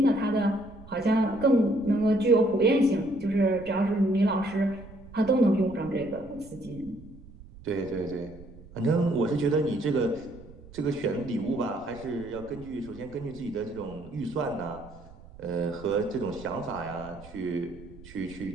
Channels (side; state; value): right; noise; rumble, 20 dB below the sound